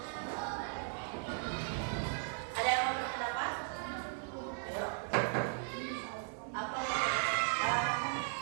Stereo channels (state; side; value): silent; left; 53 dB below the other